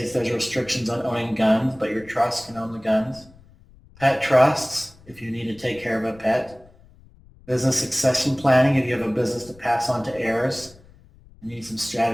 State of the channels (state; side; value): noise; left; rumble, 25 dB below the sound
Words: there's restrictions on owning guns, but your trust can own the guns. Pet trusts, if you need to take care of a pet. Business succession planning, if you have a business to pass on to heirs. You need some